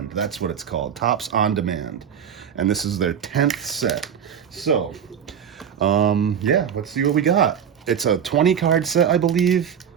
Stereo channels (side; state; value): left; quieter; 8.3 dB